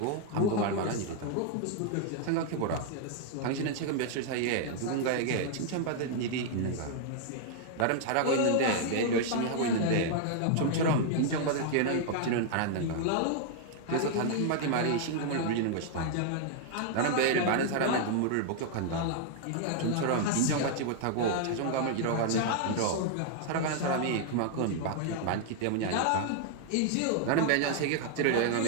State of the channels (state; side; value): different; both; correlation -0.01